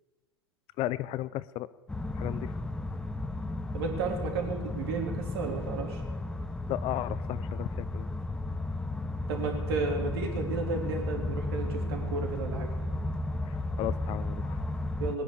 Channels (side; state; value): both; normal; correlation 0.57